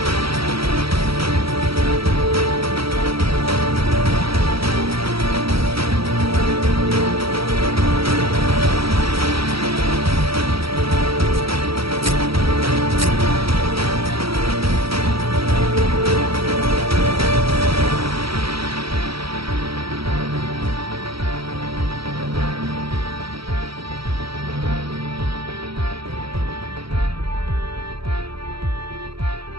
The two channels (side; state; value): left; late; 0.75 ms